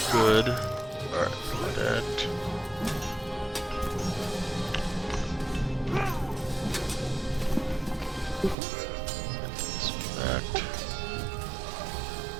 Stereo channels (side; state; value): left; drops out; at 8.6 s